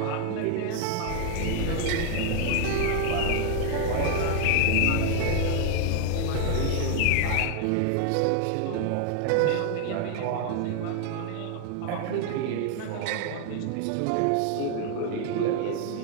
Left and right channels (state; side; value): different; both; correlation 0.00